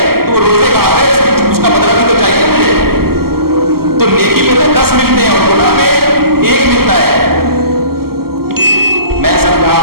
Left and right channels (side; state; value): left; late; 0.95 ms